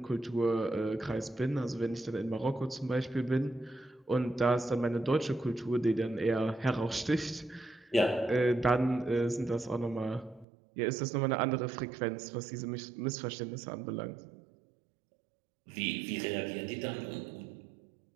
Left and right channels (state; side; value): drops out; left; at 10.5 s